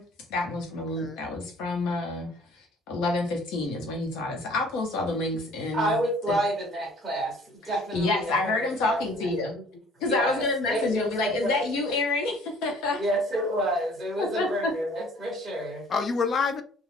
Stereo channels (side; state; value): both; normal; correlation 0.54